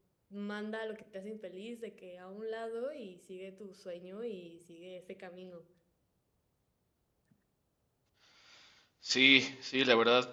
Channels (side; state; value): both; identical; correlation 1.00